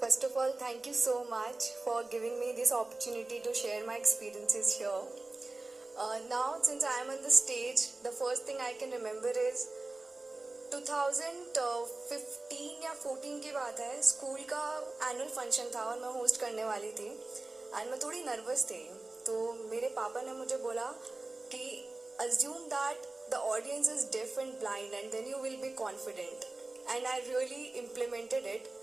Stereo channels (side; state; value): left; quieter; 3.2 dB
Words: First of all, thank you so much for giving me this opportunity to share my experiences here. Now, since I am on the stage, the first thing I can remember is 2015 या 14 की बात है. School का annual function था और मैं host करने वाली थी एंड मैं थोड़ी नर्वस थी. तो मेरे पापा ने मुझे बोला कि assume that the audience is deaf and blind and then you will be confident. And I really implemented it.